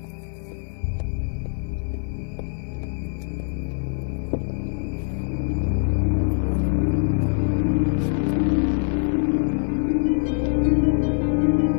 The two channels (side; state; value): right; silent; 60 dB below the other